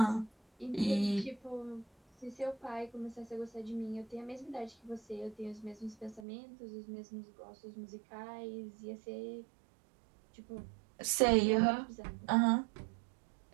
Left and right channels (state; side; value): drops out; left; at 6.2 s